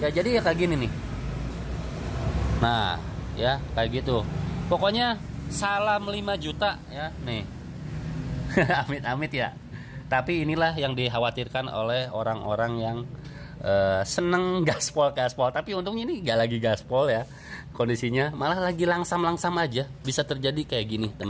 jadi ya kayak gini nih. Nah, ya kayak gitu. Pokoknya salam 5 juta ya, nih. Amit-amit ya. Tapi inilah yang dikhawatirkan oleh orang-orang yang seneng gaspol. Tapi untungnya ini gak lagi gaspol ya. Kondisinya malah lagi langsam-langsam aja. Bisa terjadi kayak gini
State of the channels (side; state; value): both; identical; correlation 1.00